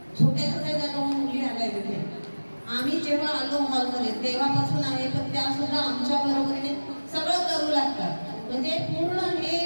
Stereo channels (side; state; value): both; inverted; correlation -1.00